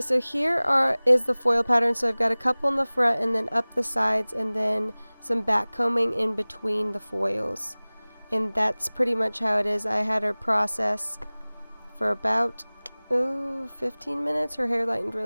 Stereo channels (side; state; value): both; inverted; correlation -1.00